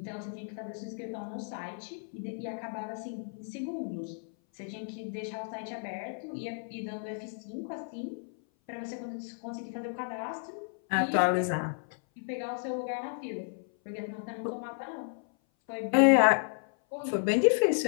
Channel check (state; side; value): silent; right; 56 dB below the other